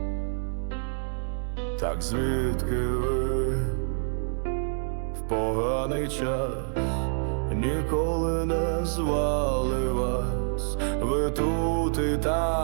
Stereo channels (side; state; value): left; silent; 60 dB below the other